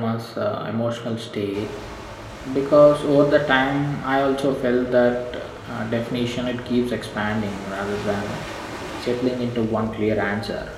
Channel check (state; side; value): identical; both; correlation 1.00